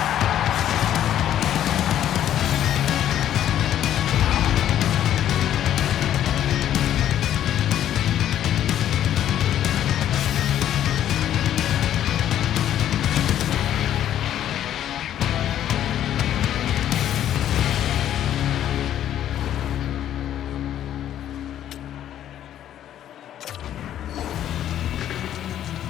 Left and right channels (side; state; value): right; quieter; 11.2 dB